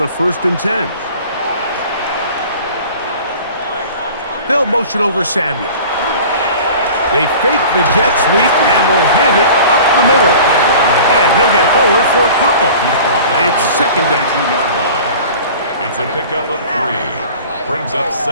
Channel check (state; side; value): inverted; both; correlation -0.42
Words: 1st and 10. They'll motion over Samuel. They fake the jet sweep and will hand it up the middle. And he'll get forward for a couple. It's 2nd down. It's a pickup of 3. Brings up